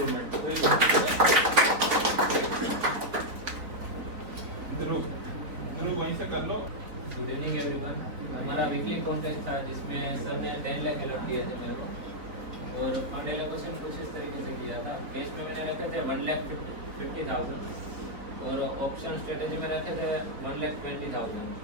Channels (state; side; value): late; left; 3.9 ms